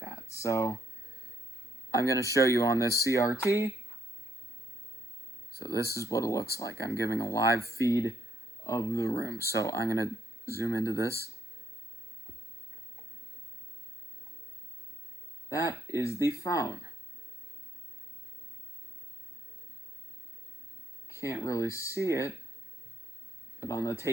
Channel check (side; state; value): both; normal; correlation 0.74